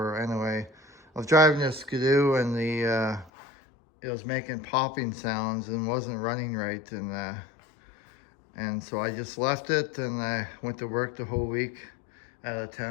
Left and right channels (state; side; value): drops out; right; at 3.3 s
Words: Anyway, I was driving this Skidoo and it was making popping sounds and wasn't running right, and so I just left it and I went to work the whole week out of